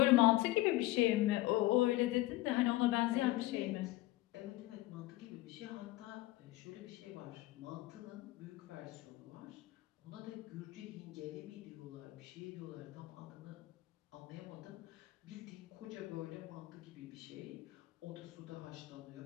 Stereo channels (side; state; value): right; quieter; 17.8 dB